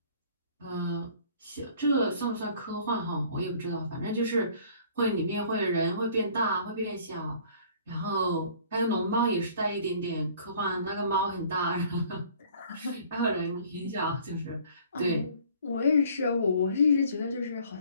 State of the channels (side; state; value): both; inverted; correlation -0.53